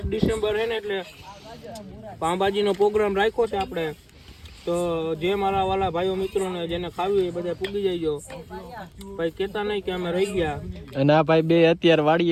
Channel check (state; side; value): identical; both; correlation 1.00